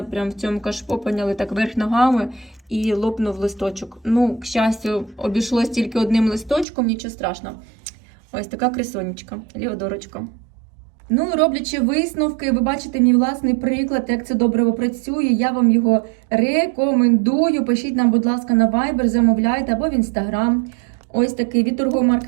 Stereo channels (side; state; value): left; drops out; at 6.7 s